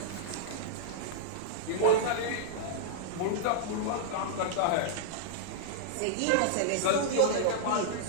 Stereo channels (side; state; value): both; different; correlation -0.02